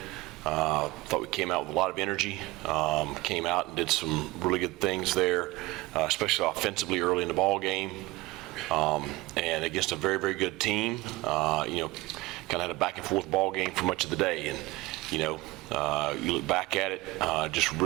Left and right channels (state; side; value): quieter; left; 20.2 dB